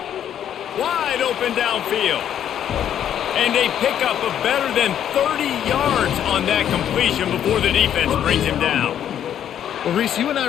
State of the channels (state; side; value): quieter; right; 9.9 dB